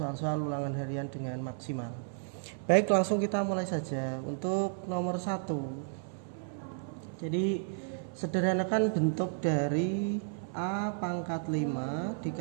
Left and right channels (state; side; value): silent; left; 56 dB below the other